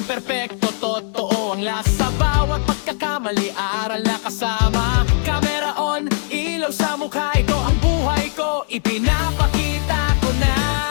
perpekto, totoo ang lasa. Bawat pagkakamali, aral na kasama. Camera on, ilaw sa mukha. Ito ang buhay ko, ipinapakita ko na.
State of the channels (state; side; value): silent; right; digital silence